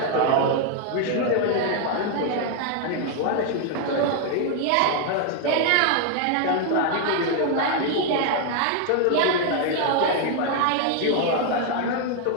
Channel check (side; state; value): both; different; correlation 0.00